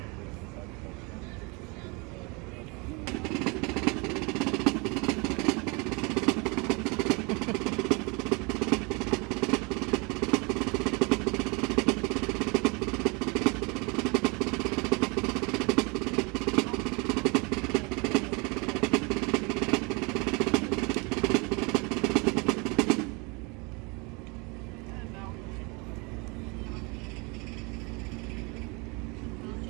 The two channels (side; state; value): left; quieter; 29.3 dB